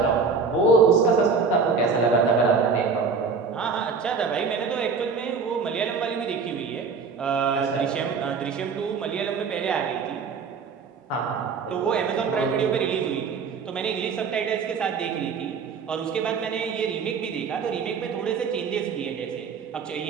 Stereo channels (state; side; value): quieter; left; 5.2 dB